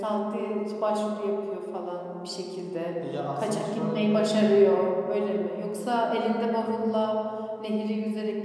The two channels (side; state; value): both; identical; correlation 1.00